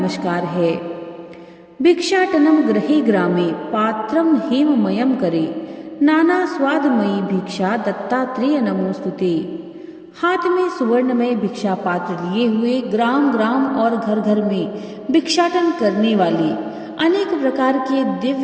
है। भिक्षाटनम गृहे ग्रामे पात्रम हेममयम करे नाना स्वादमयी भिक्षा दत्तात्रेय नमोस्तुते। हाथ में सुवर्णमय भिक्षा पात्र लिए हुए, ग्राम ग्राम और घर घर में भिक्षाटन करने वाले, अनेक प्रकार के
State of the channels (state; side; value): identical; both; correlation 1.00